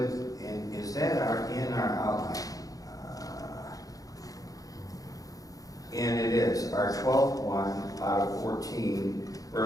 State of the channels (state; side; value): late; right; 0.17 ms